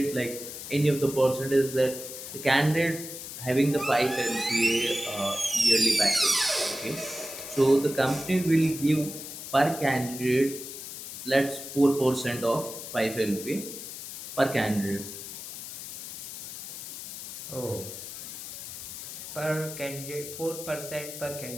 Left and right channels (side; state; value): left; noise; hiss, 9 dB below the sound